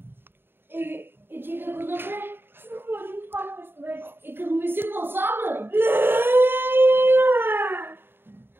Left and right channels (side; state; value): left; late; 0.10 ms